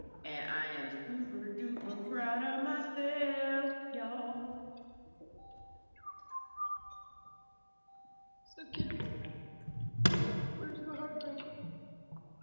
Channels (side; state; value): both; inverted; correlation -1.00